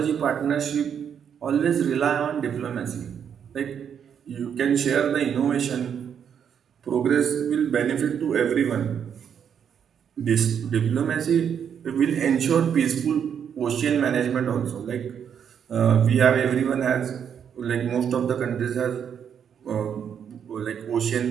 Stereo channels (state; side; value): quieter; left; 8.0 dB